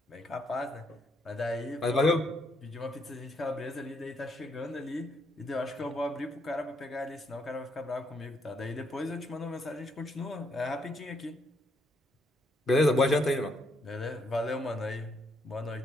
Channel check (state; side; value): normal; both; correlation 0.74